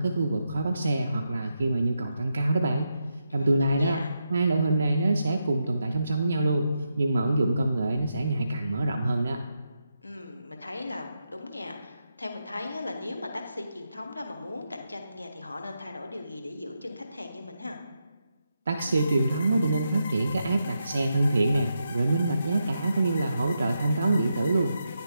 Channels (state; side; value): inverted; both; correlation -0.85